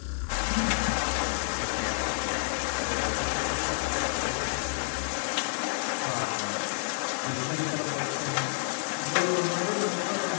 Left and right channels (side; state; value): right; silent; digital silence